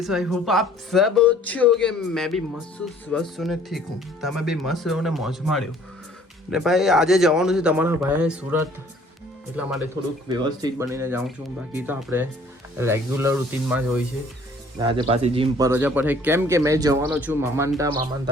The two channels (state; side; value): normal; both; correlation 0.56